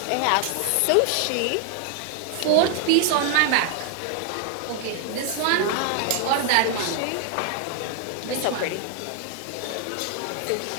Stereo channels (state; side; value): different; both; correlation 0.00